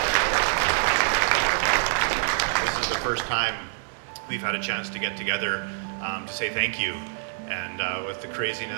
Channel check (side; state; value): left; silent; 61 dB below the other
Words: is the first time we've had a chance to get together to say thank you. And with the